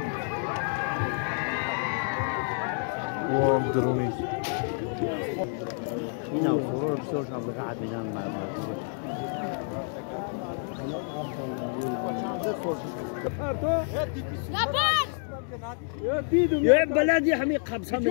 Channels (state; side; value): silent; right; 59 dB below the other